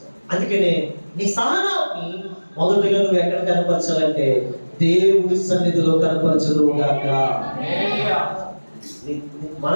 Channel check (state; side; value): inverted; both; correlation -1.00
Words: అందుకనే నీ సహనాన్ని మొదటిగా నువ్వు ఎక్కడ కనపరచాలంటే దేవుడి సన్నిధిలో కనపరచుదువుగాక.